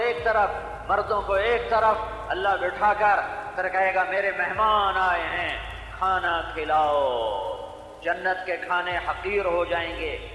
ایک طرف، مردوں کو ایک طرف اللہ بٹھا کر پھر کہے گا میرے مہمان آئے ہیں، کھانا کھلاؤ. جنت کے کھانے حقیر ہو جائیں گے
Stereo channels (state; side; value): identical; both; correlation 1.00